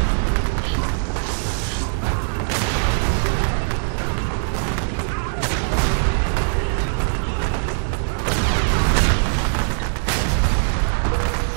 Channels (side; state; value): left; silent; digital silence